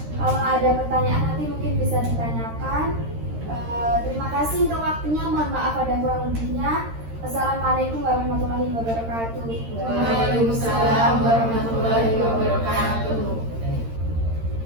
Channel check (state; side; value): late; left; 13 ms